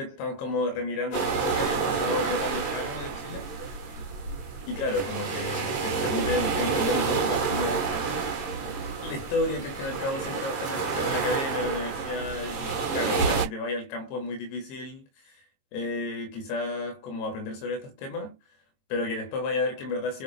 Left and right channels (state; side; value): late; right; 22 ms